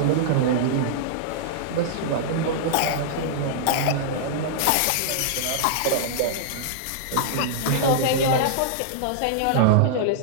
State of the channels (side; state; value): both; different; correlation -0.02